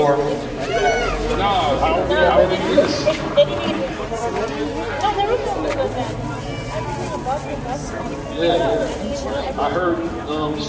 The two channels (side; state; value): both; identical; correlation 1.00